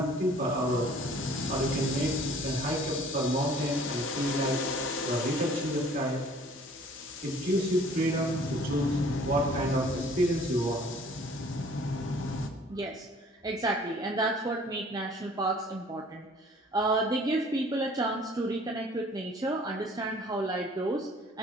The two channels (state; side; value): normal; both; correlation 0.53